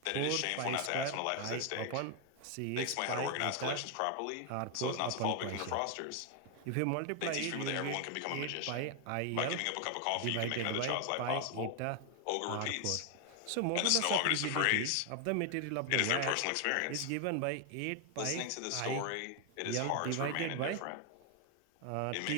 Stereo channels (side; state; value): both; different; correlation 0.00